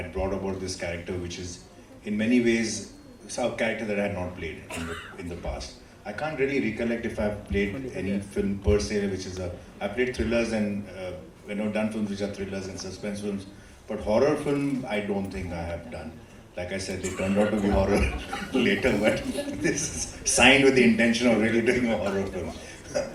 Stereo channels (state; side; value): identical; both; correlation 1.00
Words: brought about this character, which is in many ways a character that I had not played in the past. I can't really recollect if I've played any film per se, which is I played thrillers and done films which are thrillers and suspense films, but horror film I don't think I have done. Like I said, they turned out to be horror later, but this is signed with the intention of really doing a horror film.